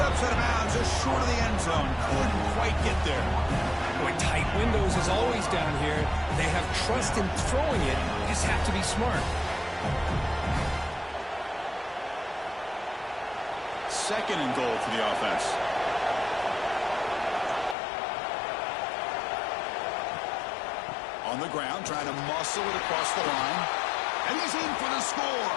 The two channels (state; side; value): drops out; right; at 17.8 s